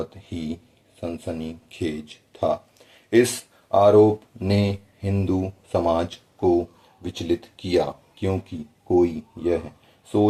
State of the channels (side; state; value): both; identical; correlation 1.00